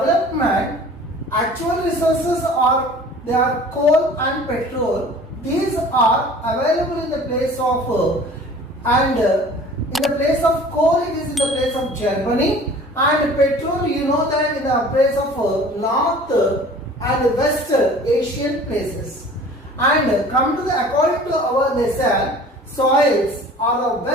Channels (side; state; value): both; normal; correlation 0.46